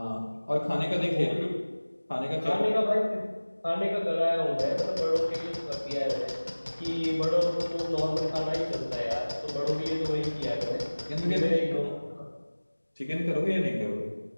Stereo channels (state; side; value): inverted; both; correlation -1.00